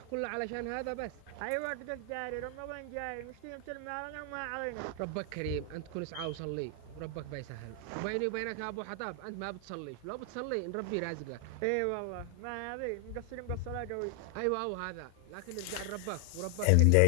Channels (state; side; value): different; both; correlation 0.00